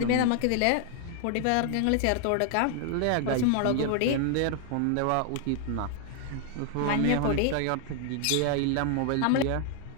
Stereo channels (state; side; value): different; both; correlation 0.00